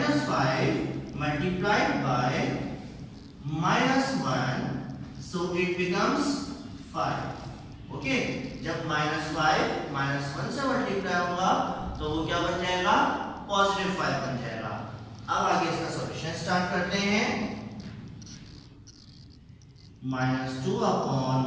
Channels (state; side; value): identical; both; correlation 1.00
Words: multiplied by -1 so it becomes 5। Okay, जब -5 -1 से मल्टीप्लाई होगा तो वो क्या बन जाएगा, पॉजिटिव 5 बन जाएगा। अब आगे इसका सॉल्यूशन स्टार्ट करते हैं।